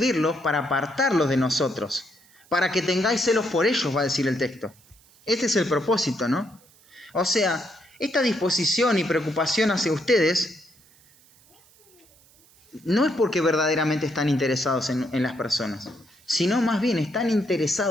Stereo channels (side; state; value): right; noise; hiss, 29 dB below the sound